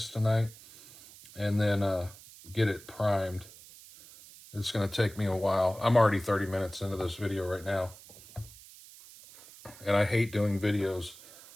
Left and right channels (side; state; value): right; noise; hiss, 20 dB below the sound